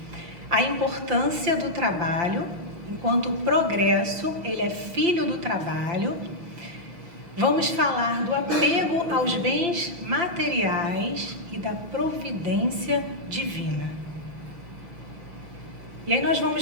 A importância do trabalho, enquanto o progresso, ele é filho do trabalho. Vamos falar do apego aos bens materiais e da providência divina. E aí nós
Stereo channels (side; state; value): left; late; 6.4 ms